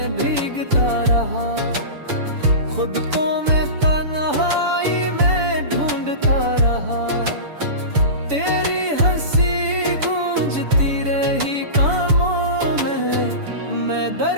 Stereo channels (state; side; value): late; left; 6.9 ms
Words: भीगता रहा, खुद को मैं तन्हाई में ढूंढता रहा। तेरी हंसी गूंजती रही कानों में, मैं